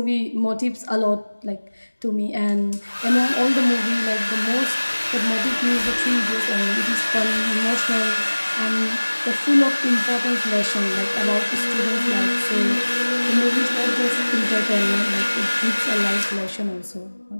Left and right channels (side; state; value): both; inverted; correlation -1.00